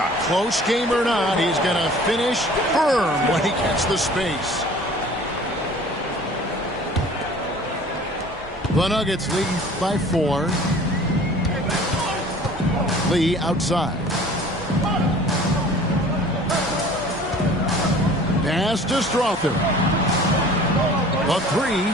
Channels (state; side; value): normal; both; correlation 0.47